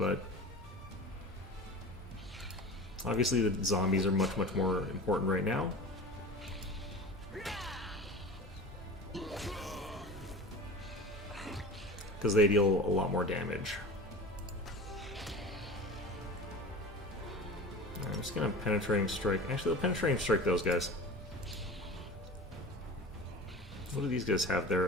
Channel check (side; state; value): both; normal; correlation 0.35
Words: obviously the zombies are much, much more important right now. Because they deal a lot more damage. I'm just gonna penetrating strike. Actually, the penetrating strike those guys. What do these guys have